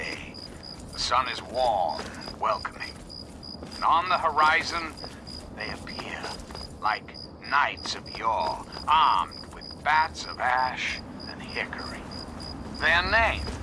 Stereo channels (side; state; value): both; identical; correlation 1.00